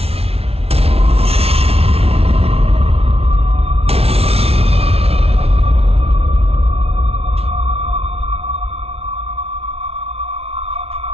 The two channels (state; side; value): late; left; 0.29 ms